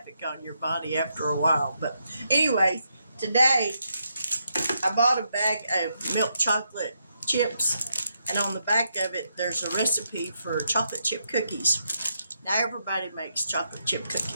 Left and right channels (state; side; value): inverted; both; correlation -0.80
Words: on your body after a while. But anyway, today I bought a bag of milk chocolate chips, and on the back of it, there's a recipe for chocolate chip cookies. Now, everybody makes chocolate chip